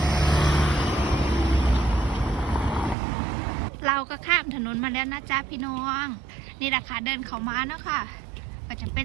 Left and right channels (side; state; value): left; drops out; at 3.0 s